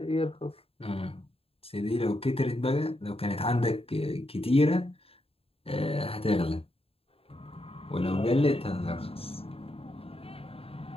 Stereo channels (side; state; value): right; late; 0.28 ms